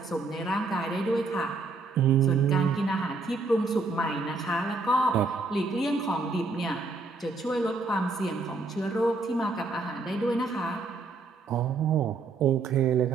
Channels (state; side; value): quieter; left; 3.7 dB